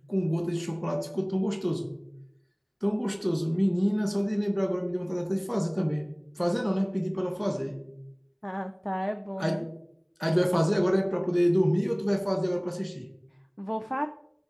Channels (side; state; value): both; identical; correlation 1.00